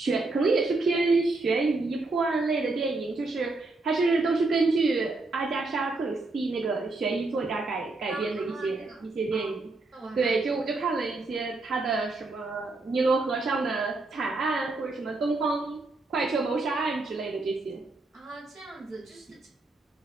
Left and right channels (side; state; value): left; quieter; 3.4 dB